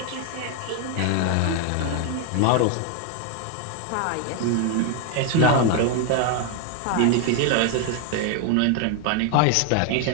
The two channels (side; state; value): both; different; correlation 0.01